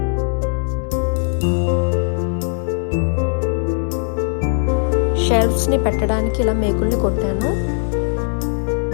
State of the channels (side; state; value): right; silent; digital silence